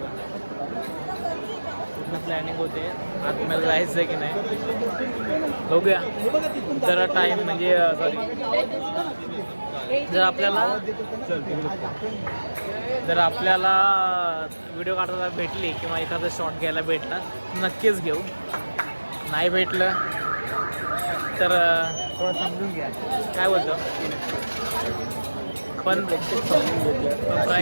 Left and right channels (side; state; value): both; inverted; correlation -1.00